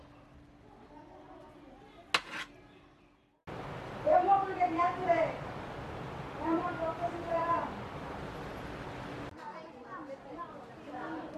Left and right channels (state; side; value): identical; both; correlation 1.00